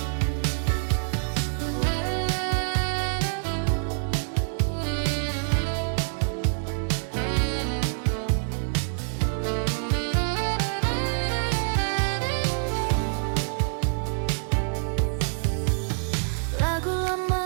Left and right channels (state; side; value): silent; left; digital silence